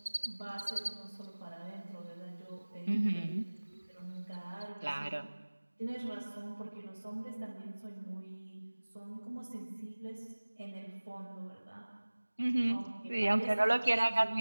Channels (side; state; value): both; inverted; correlation -1.00